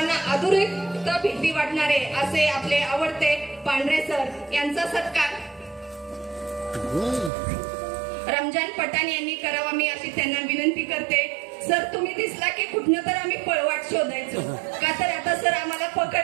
अधोरेखित भीती वाटणारे असे आपले आवडते पांढरे सर यांचा सत्कार रमजान पठाण यांनी करावा मी अशी त्यांना विनंती करते. सर तुम्ही दिसला की कुठनं तर आम्ही पळवाट शोधायचो, का तर आता सर आम्हाला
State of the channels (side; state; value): left; drops out; at 7.3 s